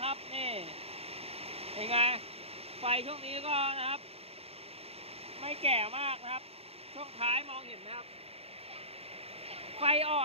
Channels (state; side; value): late; left; 0.29 ms